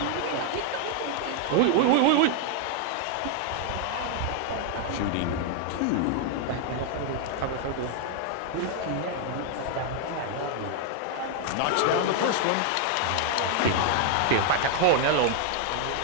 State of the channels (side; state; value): both; different; correlation 0.00